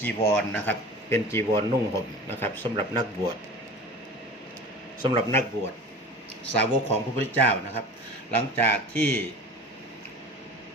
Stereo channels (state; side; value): normal; both; correlation 0.37